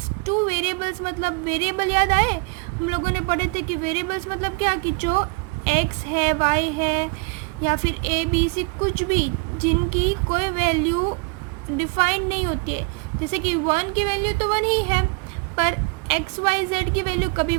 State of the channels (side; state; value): left; quieter; 31.2 dB